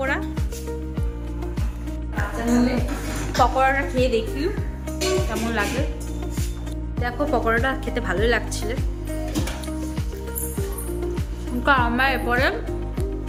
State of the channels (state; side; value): identical; both; correlation 1.00